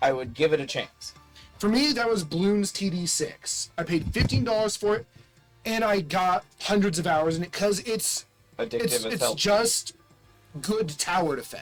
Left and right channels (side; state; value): both; identical; correlation 1.00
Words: I would give it a chance. For me, that was Bloons TD6. I paid $15 for it, and I got hundreds of hours in it because it's Addictive as hell. just good tower